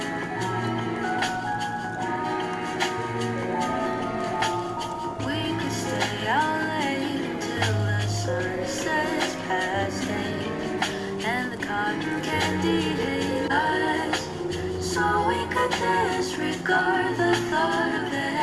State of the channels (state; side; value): identical; both; correlation 1.00